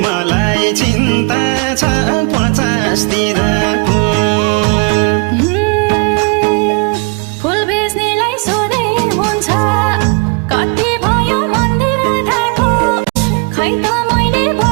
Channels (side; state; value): left; quieter; 33.4 dB